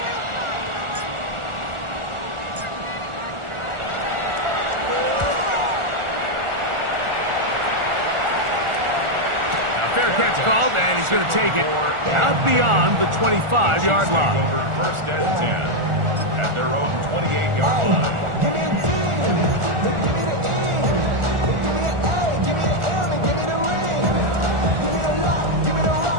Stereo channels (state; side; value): late; left; 1.4 ms